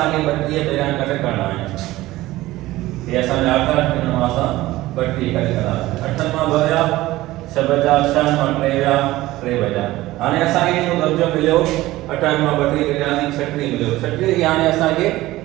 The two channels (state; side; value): quieter; left; 17.3 dB